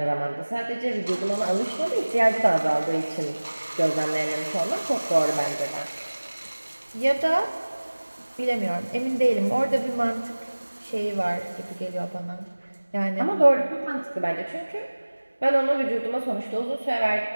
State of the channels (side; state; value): both; inverted; correlation -1.00